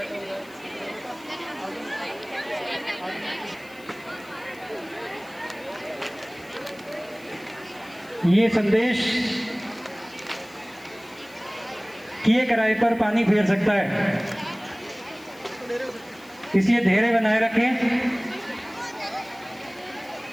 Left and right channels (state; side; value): noise; left; hiss, 25 dB below the sound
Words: ये संदेश किए किराए पर पानी फेर सकता है, इसलिए धैर्य बनाए रखें।